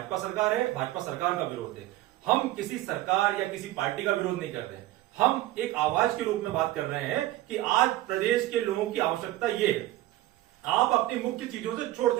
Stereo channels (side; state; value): left; quieter; 16.0 dB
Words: सरकार है, भाजपा सरकार का विरोध है। हम किसी सरकार या किसी पार्टी का विरोध नहीं कर रहे हैं, हम एक आवाज के रूप में बात कर रहे हैं कि आज प्रदेश के लोगों की आवश्यकता ये है। आप अपनी मुख्य चीजों से छोड़